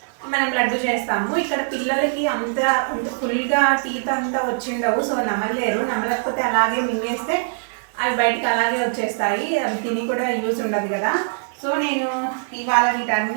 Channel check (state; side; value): silent; left; 59 dB below the other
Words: మనం లడ్డు చేస్తాము. ఇక్కడ పిల్లలకి అంత ఫుల్గా టీత్ అంతా వచ్చిండవు, సో నమలలేరు. నమలకపోతే అలాగే మింగేస్తే అవి బయటకు అలాగే వచ్చేస్తాయి. అవి తిని కూడా యూజ్ ఉండదు కదా. సో నేను ఇవాళ